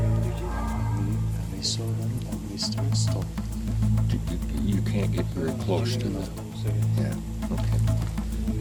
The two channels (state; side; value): identical; both; correlation 1.00